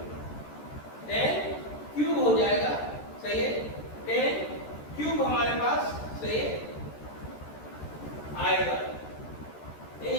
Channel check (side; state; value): right; late; 13 ms